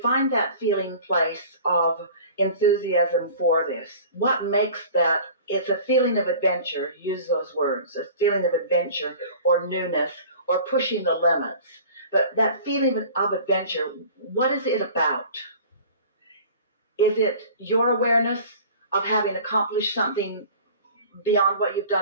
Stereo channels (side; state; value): both; inverted; correlation -0.43